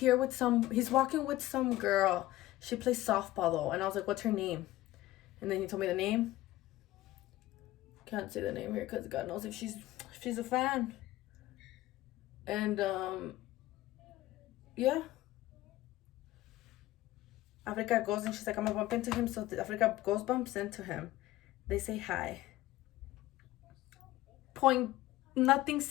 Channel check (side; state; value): right; quieter; 16.3 dB